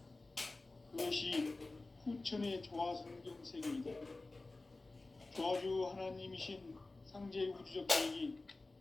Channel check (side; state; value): right; quieter; 3.3 dB